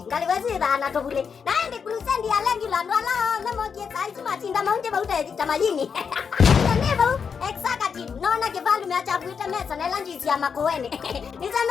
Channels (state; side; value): quieter; right; 6.3 dB